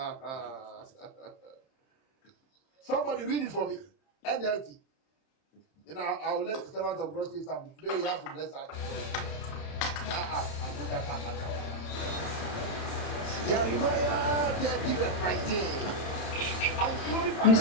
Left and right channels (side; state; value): right; late; 30 ms